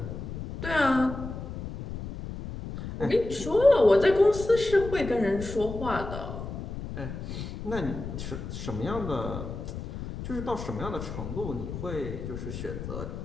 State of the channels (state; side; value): noise; left; rumble, 8 dB below the sound